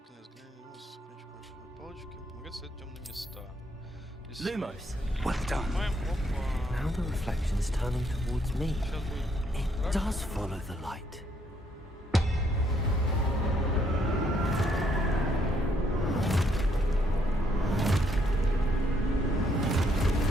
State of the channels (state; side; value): normal; both; correlation 0.71